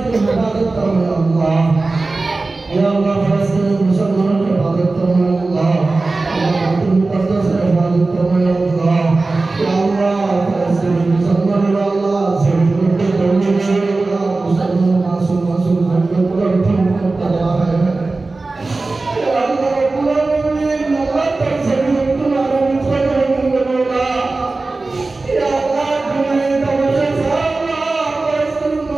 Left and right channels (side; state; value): left; quieter; 3.5 dB